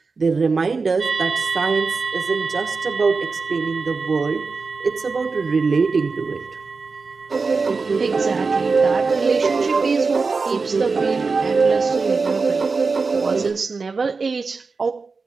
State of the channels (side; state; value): left; quieter; 4.4 dB